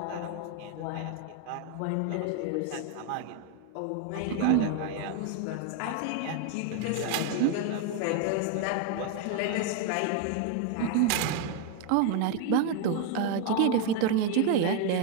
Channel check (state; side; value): different; both; correlation 0.01